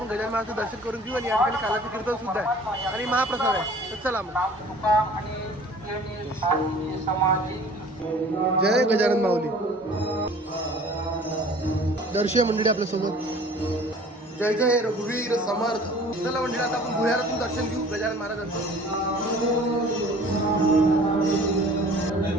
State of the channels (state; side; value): normal; both; correlation 0.48